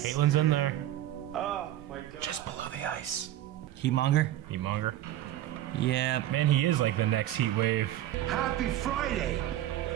Caitlin's in there. Oh my god. Just below the ice. Heatmonger? Heatmonger. Yeah. Man, he is like the next heat wave. Happy Friday!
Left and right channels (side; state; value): left; quieter; 13.3 dB